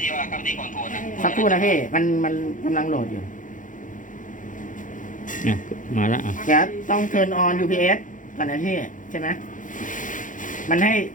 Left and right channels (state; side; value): late; right; 0.38 ms